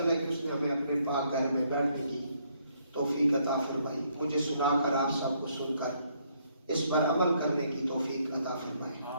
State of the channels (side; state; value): both; inverted; correlation -0.70